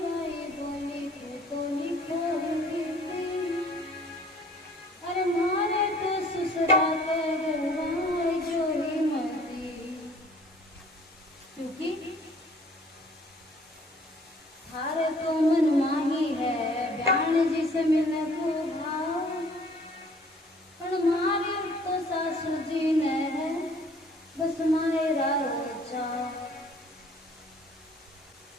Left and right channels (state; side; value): normal; both; correlation 0.55